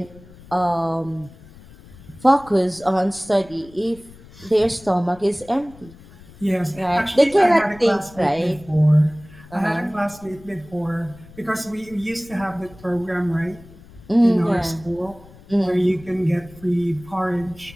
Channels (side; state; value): left; noise; rumble, 22 dB below the sound